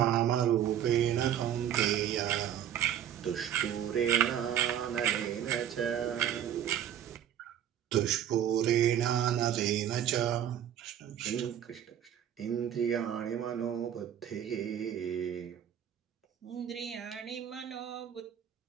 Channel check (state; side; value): quieter; left; 10.1 dB